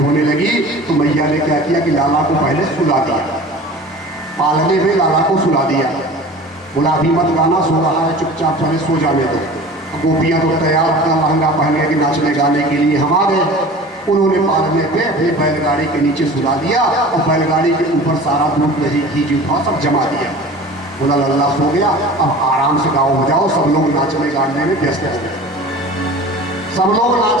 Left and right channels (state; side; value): normal; both; correlation 0.40